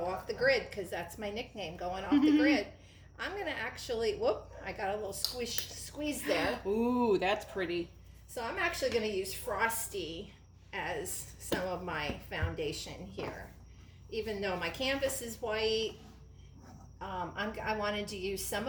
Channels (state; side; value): identical; both; correlation 1.00